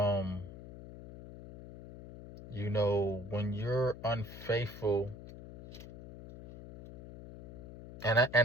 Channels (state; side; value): noise; left; hum, 15 dB below the sound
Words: when you're unfaithful, and